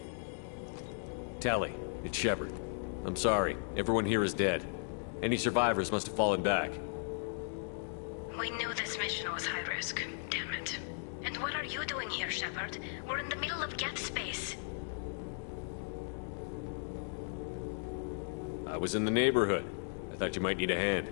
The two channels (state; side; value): silent; right; digital silence